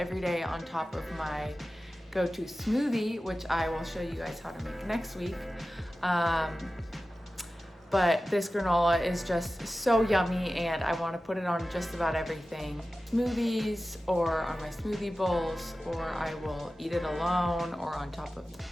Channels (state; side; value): normal; both; correlation 0.95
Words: day on top of my go-to smoothie, which I will show you guys how to make next week. But this granola is just so yummy and I want to put it on just about everything. Smoothies or on my smoothie bowls, or I will eat it alone or on top of